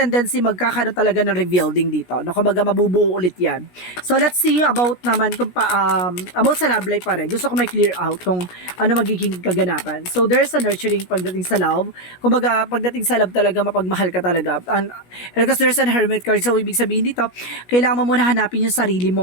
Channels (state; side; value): late; right; 17 ms